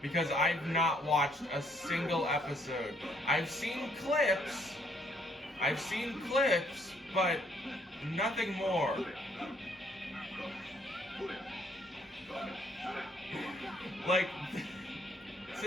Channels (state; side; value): normal; both; correlation 0.68